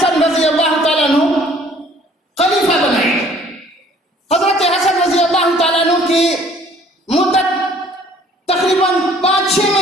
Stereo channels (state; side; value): normal; both; correlation 0.56